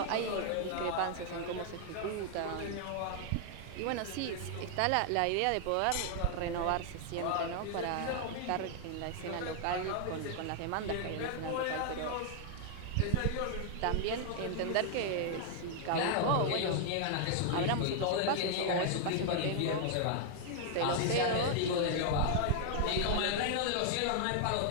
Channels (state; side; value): different; both; correlation 0.00